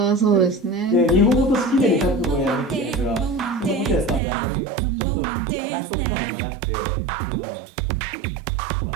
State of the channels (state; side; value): drops out; left; at 4.2 s